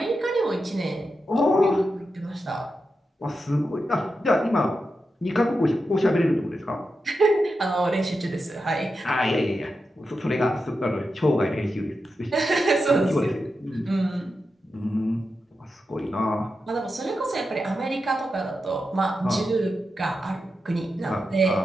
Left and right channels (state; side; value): normal; both; correlation 0.89